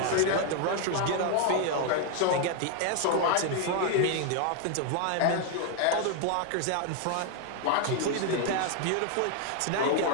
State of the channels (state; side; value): different; both; correlation 0.01